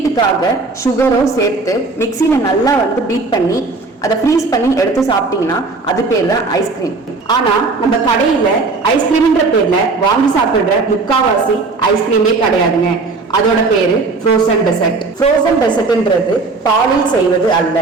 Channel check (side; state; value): left; quieter; 3.8 dB